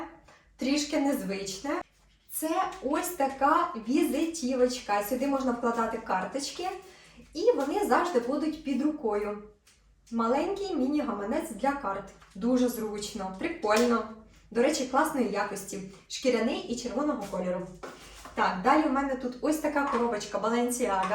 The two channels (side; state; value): both; identical; correlation 1.00